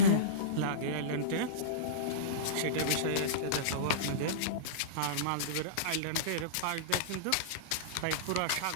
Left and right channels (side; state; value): both; different; correlation -0.06